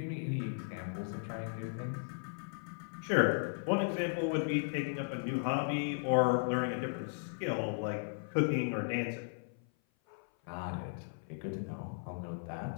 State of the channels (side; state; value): right; silent; 54 dB below the other